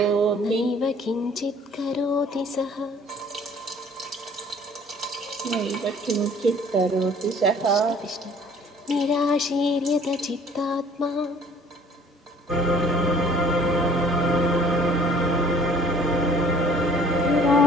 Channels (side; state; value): both; normal; correlation 0.54